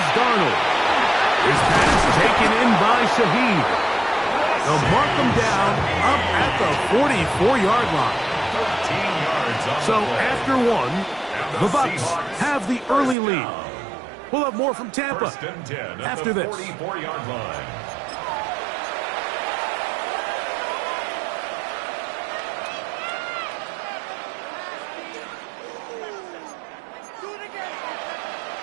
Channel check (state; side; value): drops out; left; at 13.2 s